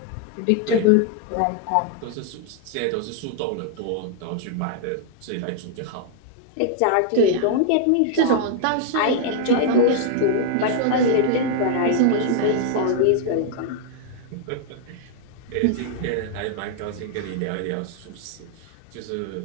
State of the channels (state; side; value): different; both; correlation 0.00